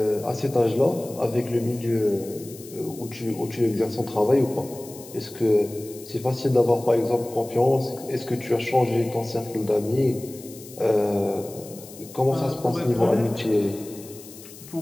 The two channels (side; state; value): left; noise; hiss, 18 dB below the sound